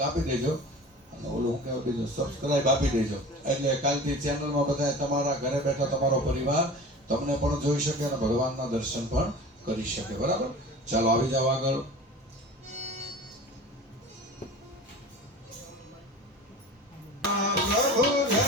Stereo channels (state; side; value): normal; both; correlation 0.37